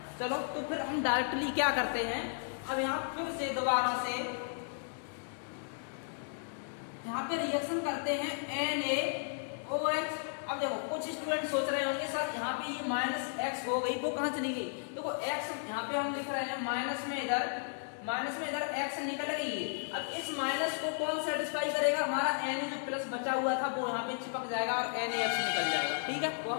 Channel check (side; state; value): right; silent; digital silence